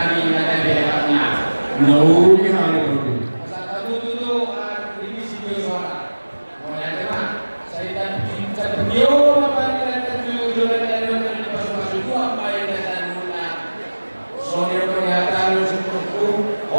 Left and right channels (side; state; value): both; inverted; correlation -1.00